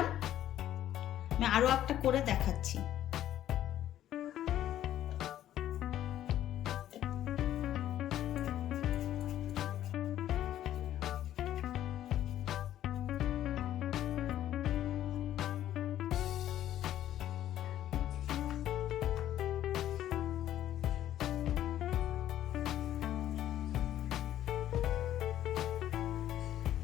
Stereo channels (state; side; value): quieter; right; 12.1 dB